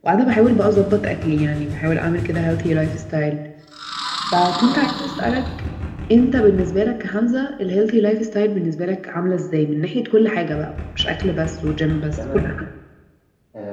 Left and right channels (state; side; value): identical; both; correlation 1.00